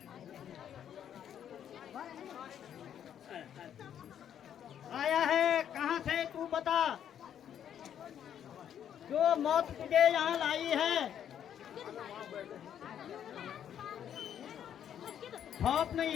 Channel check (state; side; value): quieter; right; 9.5 dB